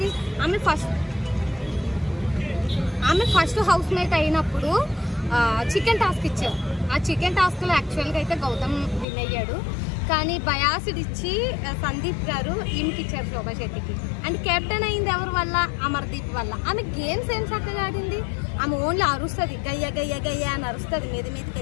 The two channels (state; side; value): drops out; right; at 9.1 s